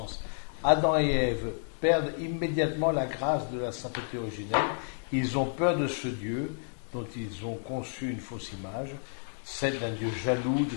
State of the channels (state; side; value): silent; right; digital silence